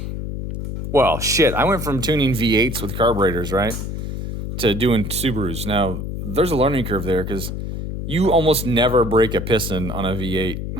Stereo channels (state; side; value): noise; left; hum, 5 dB below the sound